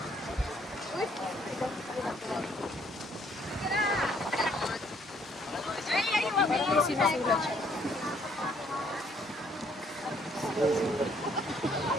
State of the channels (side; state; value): both; normal; correlation 0.65